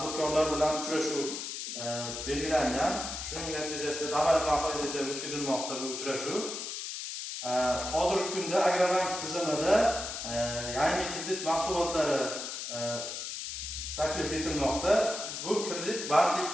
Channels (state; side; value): noise; left; hiss, 6 dB below the sound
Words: bilan uchrashuv belgilangan. Shuning natijasida davlat bahonada o'tkazilmoqda bu uchrashuv. Hozirgi kunda Agrobank tizimida yangi kredit mahsulotlari taklif etilmoqda. Bu kredit